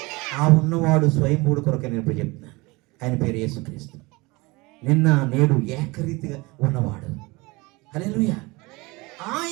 ఆ ఉన్నవాడు స్వయంభూడు కొరకే నేను ఇప్పుడు చెప్తున్నాను. ఆయన పేరు యేసుక్రీస్తు. నిన్న నేడు ఏకరీతిగా ఉన్నవాడు. హల్లెలూయా.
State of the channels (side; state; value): left; quieter; 24.0 dB